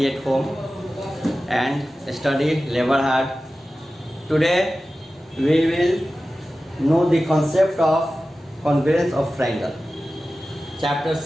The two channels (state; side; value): normal; both; correlation 0.95